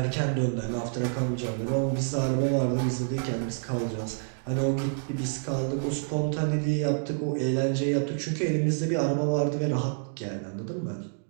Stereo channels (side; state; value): left; silent; digital silence